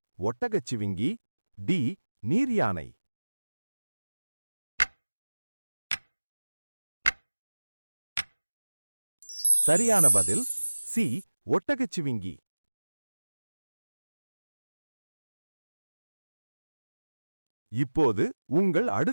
ஒட்டகச்சிவிங்கி, டி நீர்யானை. சரியான பதில் சி ஒட்டகச்சிவிங்கி. இப்போது உங்கள்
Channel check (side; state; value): both; inverted; correlation -1.00